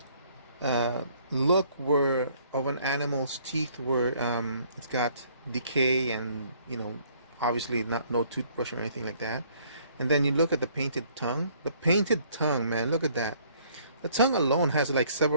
look where of an animal's teeth where it's got decay and, you know, obviously no toothbrush or anything like that. And then you look at the painted tongue. The painted tongue, man, look at that. The tongue alone has like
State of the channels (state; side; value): inverted; both; correlation -0.62